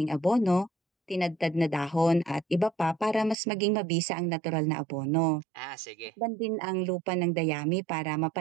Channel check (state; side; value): drops out; left; at 3.4 s